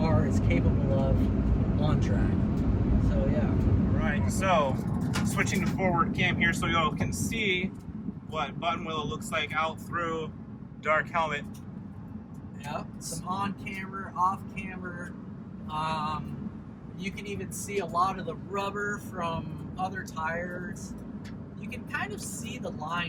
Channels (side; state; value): both; identical; correlation 1.00